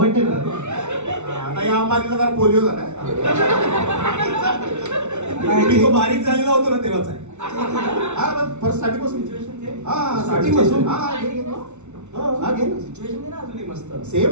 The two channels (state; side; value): late; left; 0.83 ms